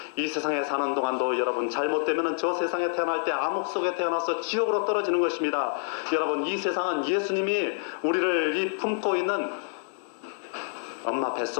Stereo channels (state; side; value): silent; right; digital silence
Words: 이 세상에 사는 동안도 여러분 잘못되면 저 세상에 태어날 때 암흑 속에 태어나서 지옥으로 떨어지는 것입니다. 여러분, 이 세상은 예수님이 우리를 품고 있는 엄마